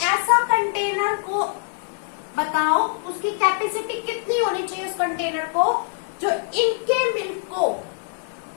ऐसा कंटेनर को बताओ, उसकी कैपेसिटी कितनी होनी चाहिए उस कंटेनर को, जो इनके मिल्क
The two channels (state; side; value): silent; right; digital silence